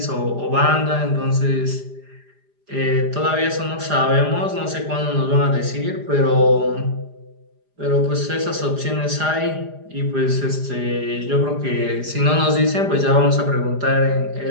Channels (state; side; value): late; left; 4.9 ms